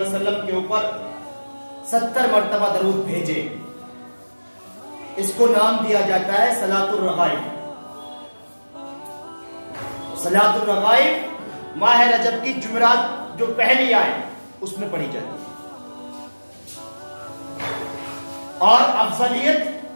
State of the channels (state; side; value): inverted; both; correlation -1.00